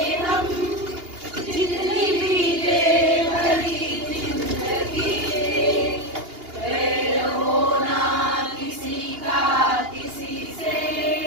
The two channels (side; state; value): left; late; 2.8 ms